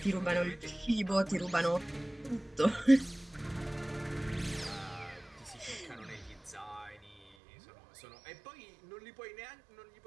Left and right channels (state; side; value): drops out; left; at 7.2 s